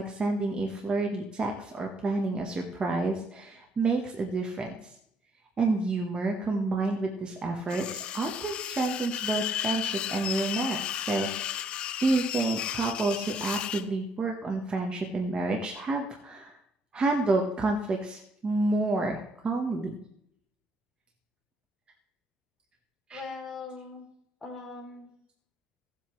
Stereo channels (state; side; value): normal; both; correlation 0.69